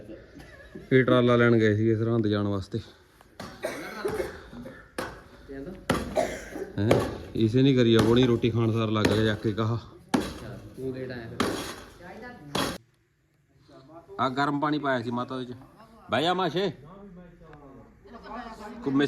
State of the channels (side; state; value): both; identical; correlation 1.00